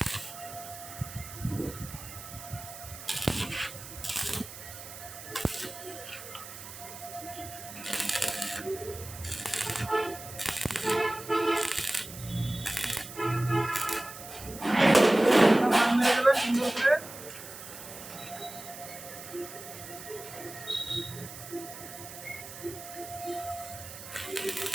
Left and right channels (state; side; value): noise; right; hiss, 13 dB below the sound